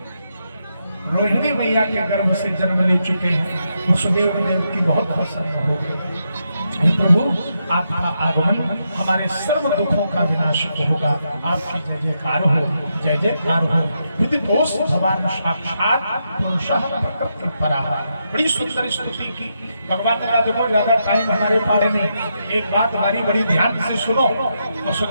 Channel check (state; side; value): inverted; both; correlation -0.83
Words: रोहिणी मैया के गर्भ से जन्म ले चुके हैं। वसुदेव देव की बहुत प्रसन्न हो गए। प्रभु आपका आगमन हमारे सर्व दुखों का विनाश होगा, आपकी जय जयकार हो, जय जयकार हो। विदितोष भगवान साक्षात पुरुषः प्रकृति पराः। बड़ी सुंदर स्तुति की भगवान ने कहा देखो ज्यादा टाइम हमारे पास नहीं, एक बात हमारी बड़ी ध्यान से सुनो।